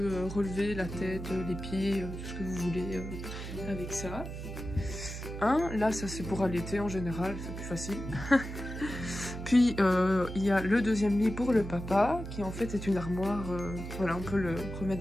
relever la tête, les pieds, tout ce que vous voulez avec ça. Là ça c'est pour allaiter en général, c'est plus facile. Puis il y a le deuxième lit pour le papa, qui en fait est une armoire, voilà on peut le remettre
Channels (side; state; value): right; noise; hum, 8 dB below the sound